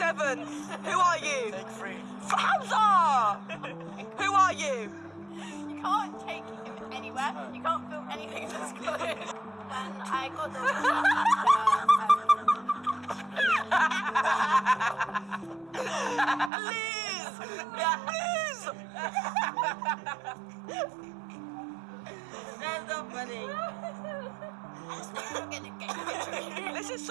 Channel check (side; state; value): left; drops out; at 16.5 s